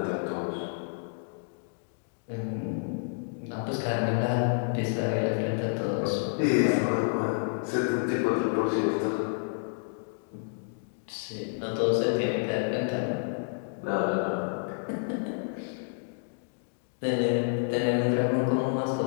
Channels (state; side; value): silent; right; digital silence